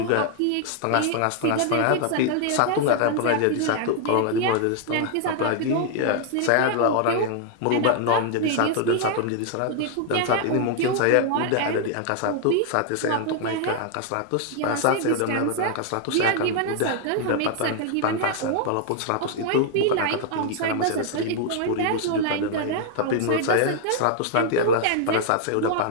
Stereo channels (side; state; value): both; different; correlation 0.00